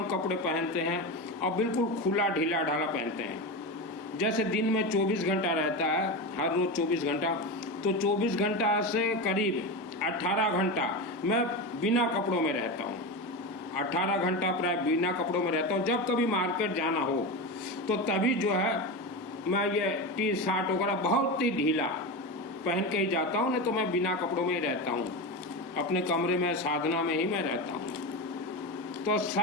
कपड़े पहनते हैं और बिल्कुल खुला ढीला ढाला पहनते हैं। जैसे दिन में 24 घंटा रहता है, हर रोज 24 घंटा, तो 24 घंटा से करीब 18 घंटा मैं बिना कपड़ों में रहता हूँ। 18 घंटा प्राय बिना कपड़ों में रहता हूँ। जब कभी मार्केट जाना हो तो तभी जो है मैं ये टी शर्ट वगैरह बहुत ही ढीला पहन के ही जाता हूँ, नहीं तो मैं बिना कपड़ों में ही रहता हूँ। अपने कमरे में साधना में ही मैं रहता हूँ। तो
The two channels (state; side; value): normal; both; correlation 0.20